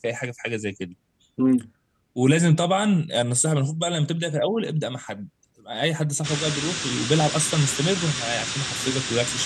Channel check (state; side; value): identical; both; correlation 1.00